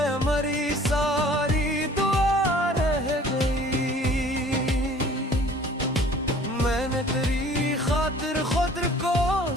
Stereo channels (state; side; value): normal; both; correlation 0.51